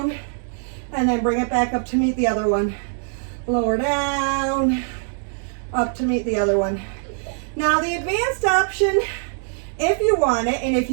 and then bring it back up to meet the other one. Lower down, up to meet the other one. Now the advanced option, if you want it, and if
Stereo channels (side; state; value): left; silent; digital silence